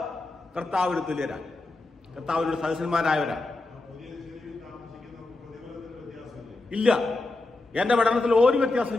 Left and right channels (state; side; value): quieter; right; 3.1 dB